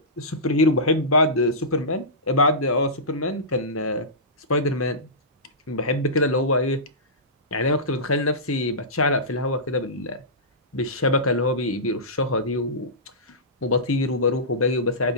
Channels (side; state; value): both; normal; correlation -0.18